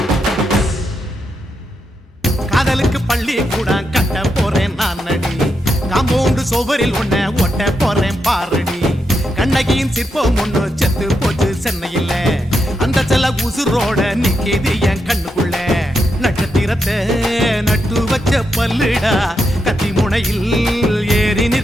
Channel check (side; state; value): both; normal; correlation 0.83